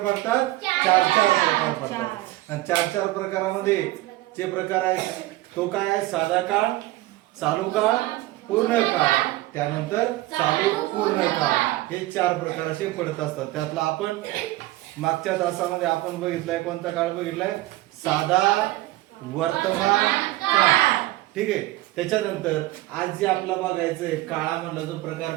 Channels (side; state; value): left; quieter; 17.9 dB